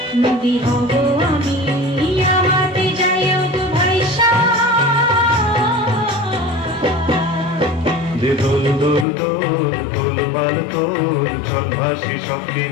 নদী হব আমি আমাতে যাইও গো ভাইসা যে দোল দোল দোল দোল মান তোর চল ভাসি সব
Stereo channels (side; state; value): right; drops out; at 9.1 s